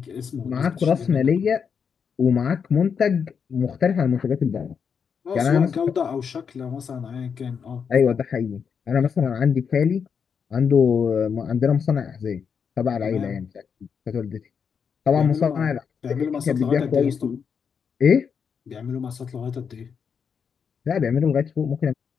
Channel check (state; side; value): quieter; right; 6.6 dB